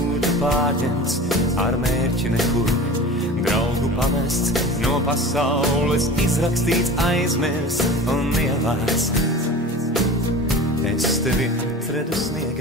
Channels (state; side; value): normal; both; correlation 0.36